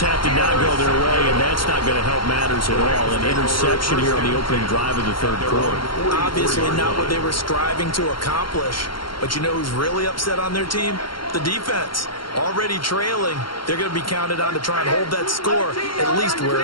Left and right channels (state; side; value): late; right; 0.73 ms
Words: half did not go their way, and that's not going to help matters at all. An interception here on the opening drive of the third quarter. Obviously not what they were striving to accomplish. But you know who's really upset on their team? The defense. Already trailing, they're going to be counted on to try and hold that score at least where